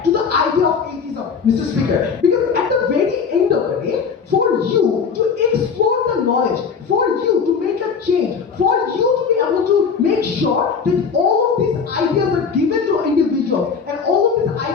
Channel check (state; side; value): quieter; right; 5.9 dB